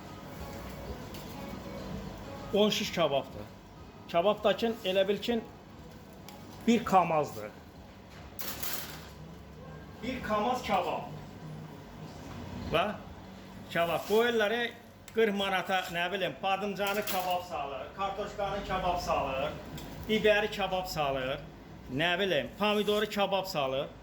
10 şiş kababdır. Kababdakın elə bil ki, bir kamazdır. Bir kamaz kabab. Bax, kabab. Qoyurları 40 manata, nə bilim, badımcanı kabab salır, kartoşkanı kabab salır, biberi kabab salır, nə bilim, pomidoru kabab salır.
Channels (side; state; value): both; identical; correlation 1.00